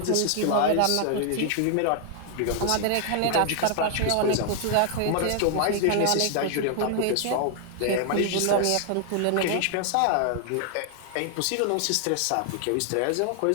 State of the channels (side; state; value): both; different; correlation 0.00